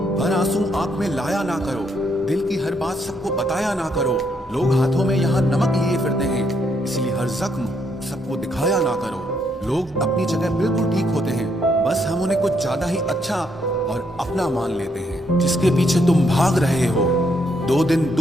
हर आंसू आंख में लाया ना करो, दिल की हर बात सबको बताया ना करो। लोग हाथों में यहाँ नमक लिए फिरते हैं, इसलिए हर जख्म सबको दिखाया ना करो। लोग अपनी जगह बिल्कुल ठीक होते हैं, बस हम उन्हें कुछ ज्यादा ही अच्छा और अपना मान लेते हैं। जिसके पीछे तुम भाग रहे हो, 2 दिन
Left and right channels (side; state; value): both; normal; correlation 0.74